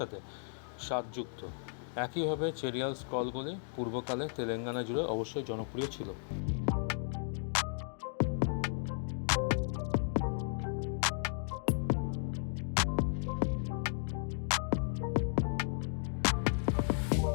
স্বাদযুক্ত। একইভাবে চেরিয়াল স্ক্রলগুলি পূর্বকালে তেলেঙ্গানা জুড়ে অবশ্যই জনপ্রিয় ছিল।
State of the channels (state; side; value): silent; right; digital silence